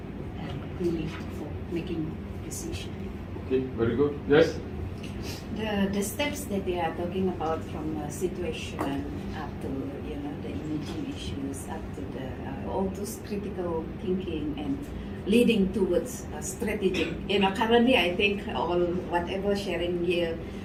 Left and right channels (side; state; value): both; identical; correlation 1.00